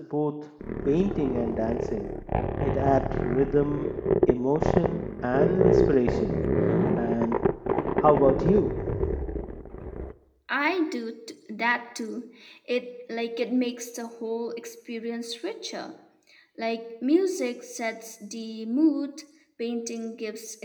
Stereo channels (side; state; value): both; identical; correlation 1.00